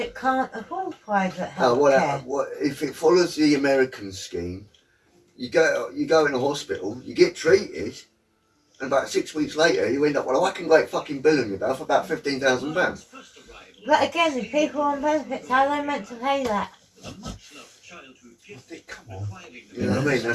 can't afford private health care? If it follows the American scheme, you go in a hospital, you get treated, and about 6 weeks later you end up with a whacking great fucking bill on your bill for about £15,000. But again, if people are on benefits, how are they meant to pay that? Come on. You know what I mean?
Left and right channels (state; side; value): identical; both; correlation 1.00